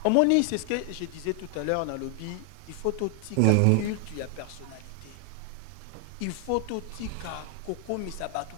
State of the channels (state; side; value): different; both; correlation 0.00